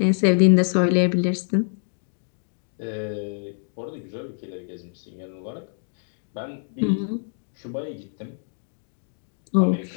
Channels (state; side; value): silent; right; digital silence